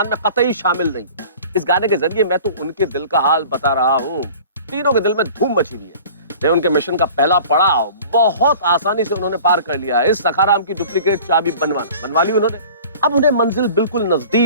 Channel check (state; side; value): inverted; both; correlation -0.44